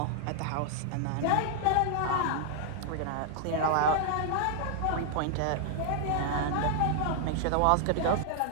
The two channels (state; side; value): different; both; correlation 0.00